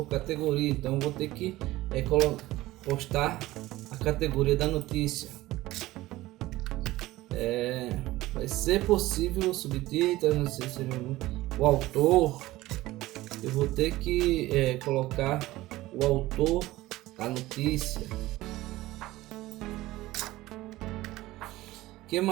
categoria. Então vou ter que postar a categoria da notícia. Vai ser possível o subtítulo, não sei se o autor. Eu vou ter que colocar o autor da notícia. Que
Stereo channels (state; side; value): quieter; left; 17.4 dB